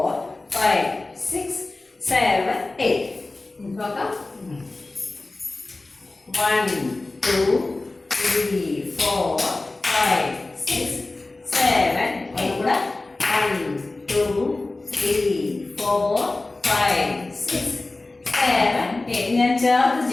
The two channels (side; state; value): right; quieter; 3.1 dB